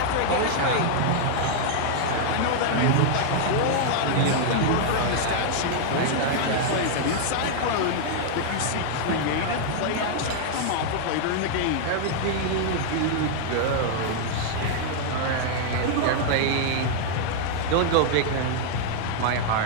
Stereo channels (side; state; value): both; different; correlation -0.01